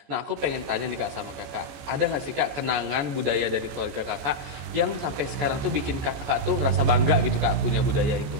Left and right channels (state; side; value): late; left; 15 ms